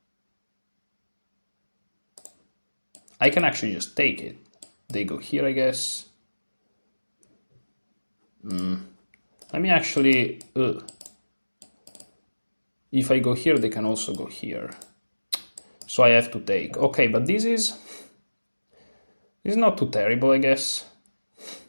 I can actually just take it. They go here, I guess. Let me actually... If I go here, they can also go here. So I have to take. Okay, but this is not too terrible, I guess.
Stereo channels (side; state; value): both; inverted; correlation -1.00